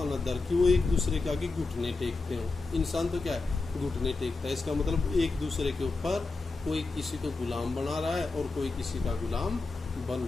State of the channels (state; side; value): quieter; right; 3.7 dB